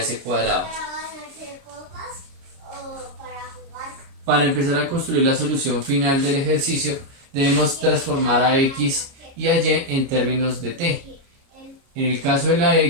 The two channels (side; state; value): left; late; 29 ms